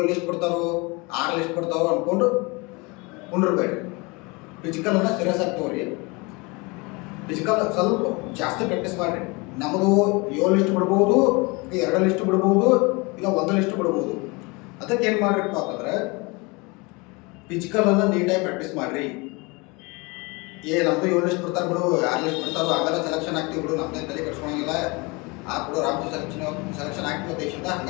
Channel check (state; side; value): quieter; right; 27.1 dB